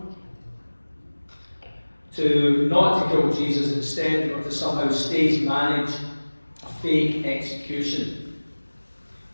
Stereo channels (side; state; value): both; inverted; correlation -1.00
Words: not to kill Jesus, instead, or to somehow stage manage a fake execution.